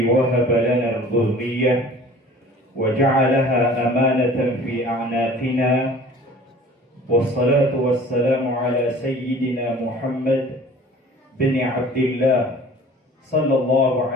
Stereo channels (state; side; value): normal; both; correlation 0.47